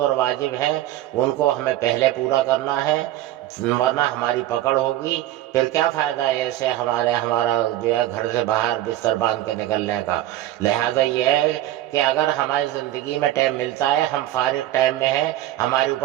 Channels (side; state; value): left; quieter; 13.9 dB